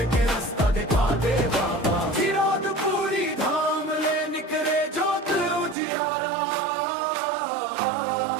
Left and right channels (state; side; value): drops out; left; at 5.8 s